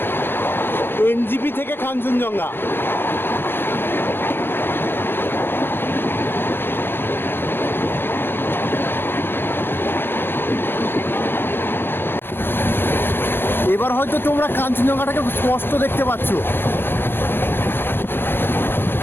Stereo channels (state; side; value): late; right; 0.10 ms